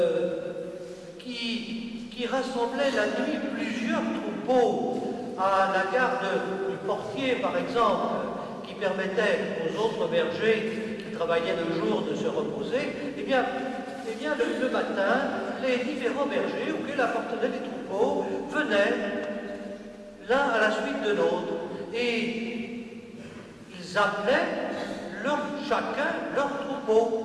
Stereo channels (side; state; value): both; identical; correlation 1.00